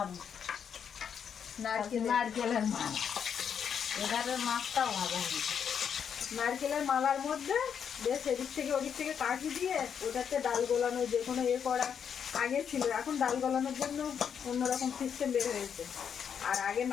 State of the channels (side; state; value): right; quieter; 7.6 dB